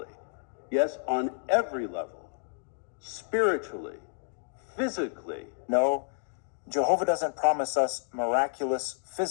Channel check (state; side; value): silent; right; digital silence